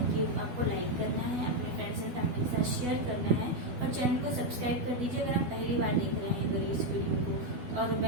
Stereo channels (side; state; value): left; late; 12 ms